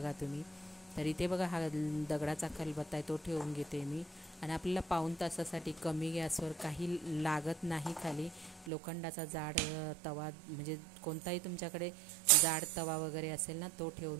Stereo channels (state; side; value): drops out; left; at 8.7 s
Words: तुम्ही. तर इथे बघा हा दगडाचा खलबत्ता आहे तो ठेवून घेते मी, आणि आपल्याला पाऊण तासासाठी कमी गॅसवर काही लागत नाही. खाली लोखंडाचा जाड तवा, म्हणजे कोणताही तुमच्याकडे जाड तवा वगैरे असेल ना तो